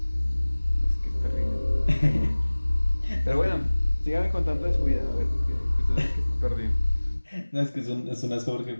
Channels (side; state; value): both; inverted; correlation -1.00